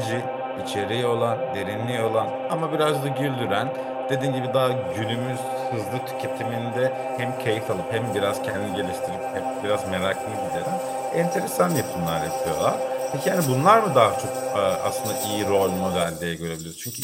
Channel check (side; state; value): both; identical; correlation 1.00